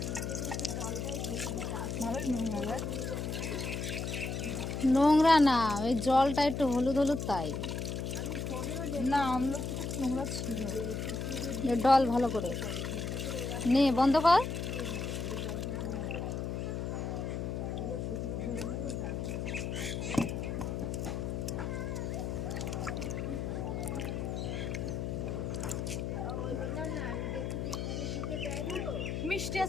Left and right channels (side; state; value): left; noise; hum, 3 dB below the sound